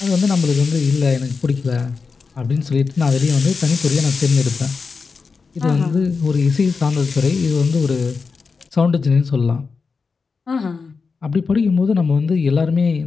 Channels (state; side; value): quieter; right; 4.8 dB